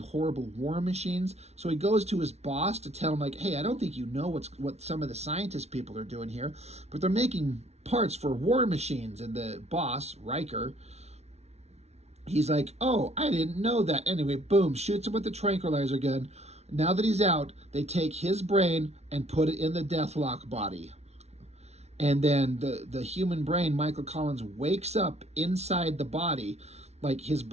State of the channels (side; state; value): left; late; 0.31 ms